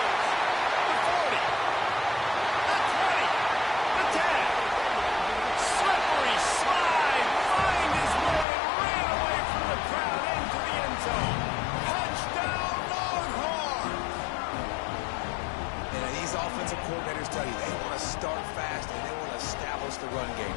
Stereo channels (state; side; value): drops out; right; at 8.5 s